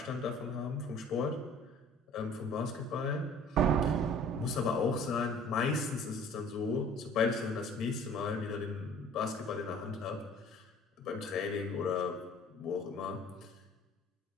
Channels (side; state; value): both; normal; correlation 0.50